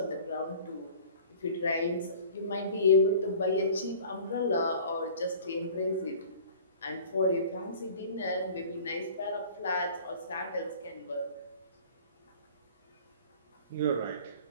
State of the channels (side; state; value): both; inverted; correlation -0.45